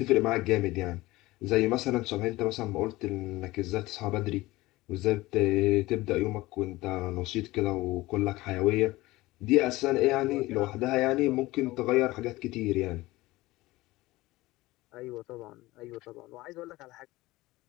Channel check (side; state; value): right; quieter; 19.2 dB